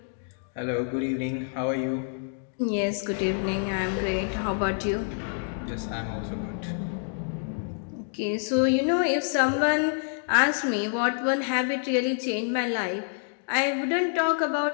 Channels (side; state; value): right; silent; digital silence